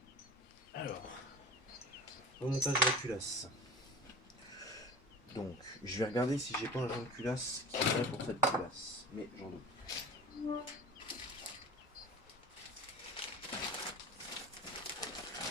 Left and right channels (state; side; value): normal; both; correlation 0.37